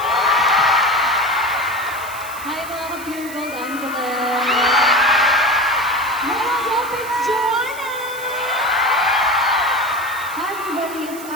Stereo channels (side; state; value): right; noise; hiss, 15 dB below the sound